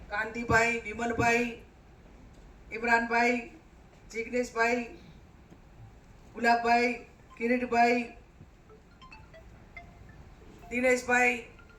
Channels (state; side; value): identical; both; correlation 1.00